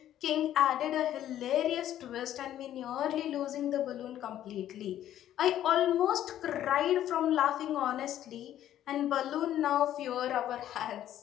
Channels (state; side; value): quieter; right; 11.8 dB